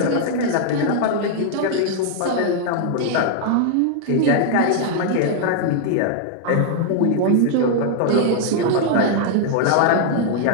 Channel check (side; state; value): both; different; correlation 0.00